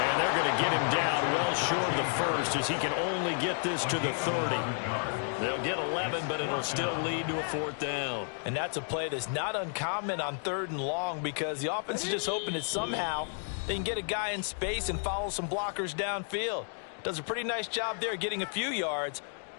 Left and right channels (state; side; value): silent; right; 57 dB below the other